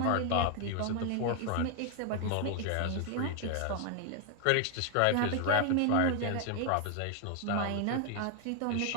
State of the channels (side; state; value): both; different; correlation 0.00